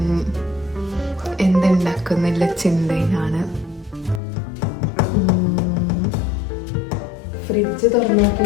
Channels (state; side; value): drops out; right; at 4.2 s